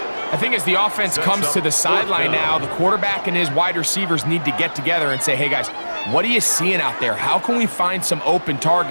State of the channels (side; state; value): both; inverted; correlation -1.00